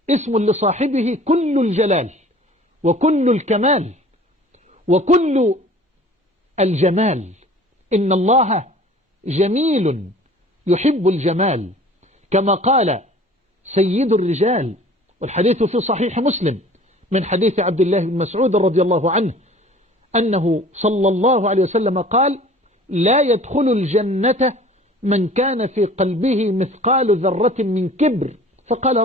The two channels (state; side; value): normal; both; correlation 0.47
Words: اسم لصاحبه كل الجلال وكل الكمال وكل الجمال. إن الله جميل يحب الجمال، كما قال سيد الرجال، والحديث في صحيح مسلم من حديث عبد الله بن مسعود رضي الله عنه أنه صلى الله عليه وسلم قال: لا يدخل الجنة من كان في قلبه مثقال ذرة من كبر. فقال